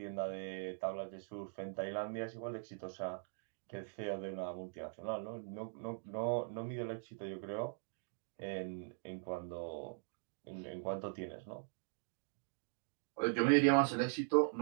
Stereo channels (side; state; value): left; silent; digital silence